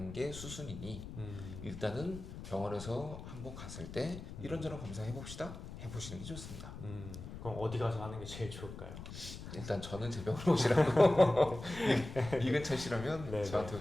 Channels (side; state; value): left; noise; rumble, 11 dB below the sound